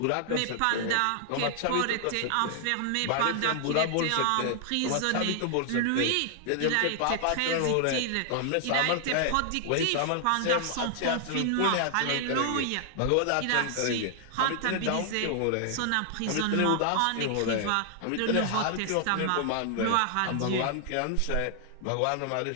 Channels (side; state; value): both; different; correlation 0.00